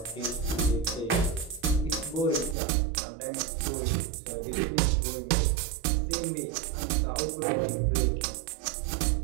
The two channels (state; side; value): drops out; left; at 2.6 s